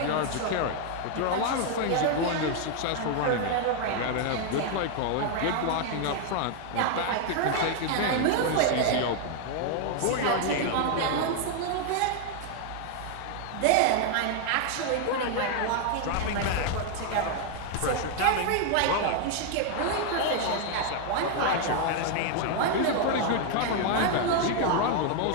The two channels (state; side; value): different; both; correlation 0.00